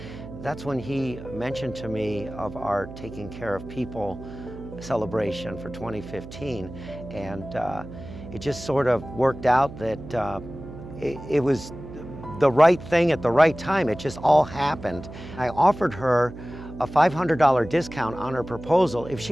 that's when he mentioned to me of our Taking Care of People celebration for 2015, and it just sort of worked out that it was the right thing at the right time. It just all happened. I offered her a $500 discount on her proposal if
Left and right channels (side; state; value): right; noise; hum, 13 dB below the sound